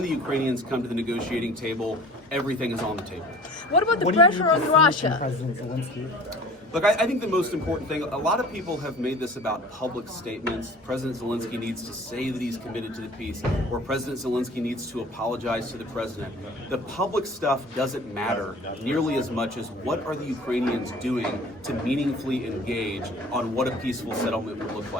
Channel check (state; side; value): normal; both; correlation 0.45